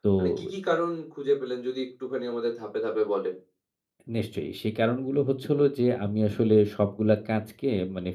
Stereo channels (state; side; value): identical; both; correlation 1.00